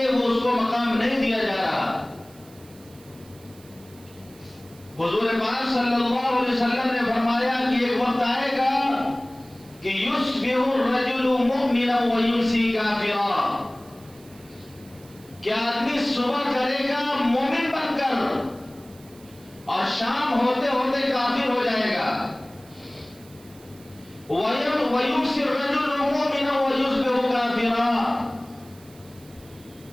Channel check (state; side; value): noise; right; hiss, 25 dB below the sound